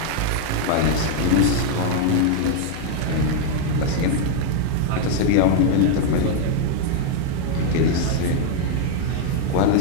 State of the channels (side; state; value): both; different; correlation 0.00